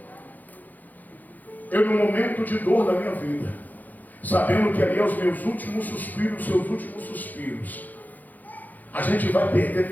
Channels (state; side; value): late; right; 0.083 ms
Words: Eu, no momento de dor da minha vida, sabendo que ali é os meus últimos suspiros, seus últimos suspiros, a gente vai perder